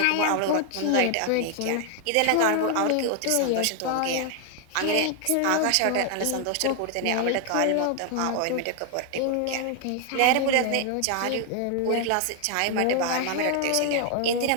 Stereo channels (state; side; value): different; both; correlation 0.00